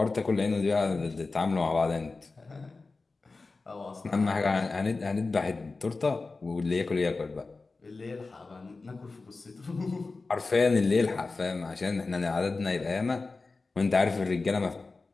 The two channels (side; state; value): right; quieter; 3.8 dB